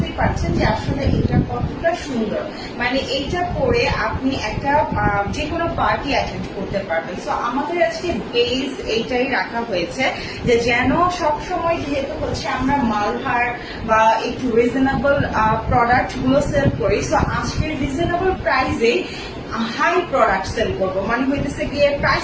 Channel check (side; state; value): both; identical; correlation 1.00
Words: পারছেন যে আসলে এটা কতটা সুন্দর, মানে এইটা পরে আপনি একটা যে কোনো পার্টি অ্যাটেন্ড করতে পারবেন। সো আমাদের আজকে বেস এইটাই রাখা হয়েছে যে যেন সব সময় যেহেতু হচ্ছে আমরা মালহার বা একটু রিজনেবল প্রোডাক্ট গুলো সেল করি, সো আজকের রিজনেবল প্রাইসেই হাই প্রোডাক্ট সেল করবো, মানে হইতেছে গিয়ে